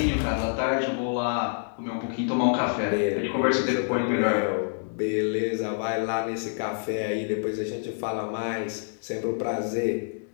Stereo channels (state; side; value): silent; right; digital silence